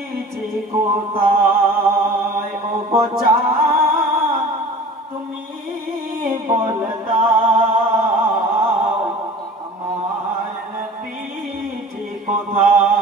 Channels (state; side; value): normal; both; correlation 0.42